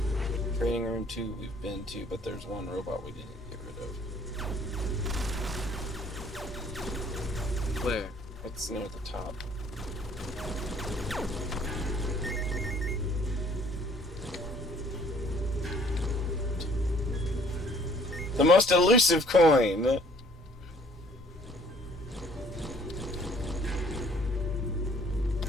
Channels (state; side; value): normal; both; correlation 0.58